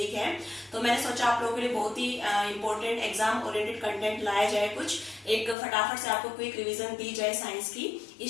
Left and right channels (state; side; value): drops out; right; at 5.6 s